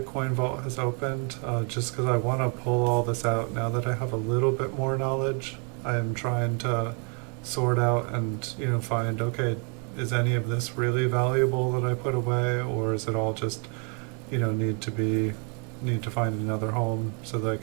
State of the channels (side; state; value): left; quieter; 37.4 dB